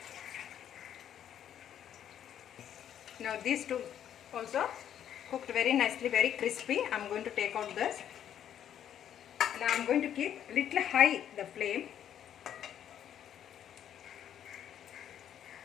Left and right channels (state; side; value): quieter; right; 9.9 dB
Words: Now these two also cooked very nicely, very crispy. I'm going to take out this. Now I'm going to keep little high the flame.